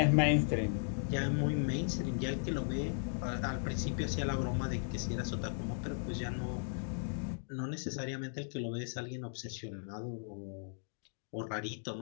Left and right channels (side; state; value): right; silent; digital silence